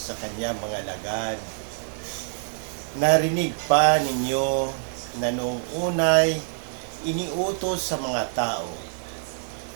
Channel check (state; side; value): silent; left; digital silence